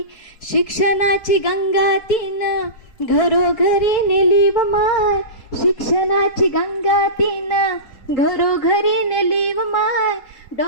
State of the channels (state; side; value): late; right; 4.3 ms